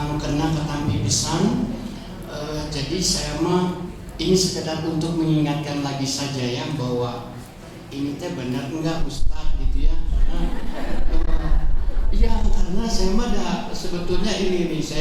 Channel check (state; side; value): identical; both; correlation 1.00